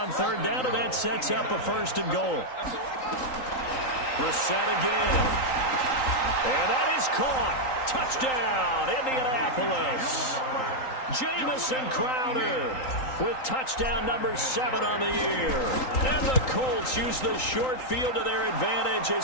3rd down, and that sets up a 1st and goal. Brissett again. And that is caught. Touchdown, Indianapolis. Jamison Crowder with touchdown number 7 on the year. And the Colts use the short field to their advantage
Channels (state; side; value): late; right; 3.8 ms